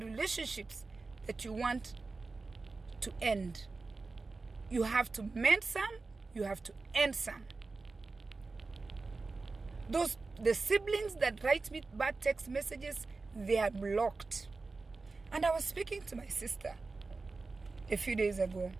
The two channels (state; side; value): quieter; left; 3.9 dB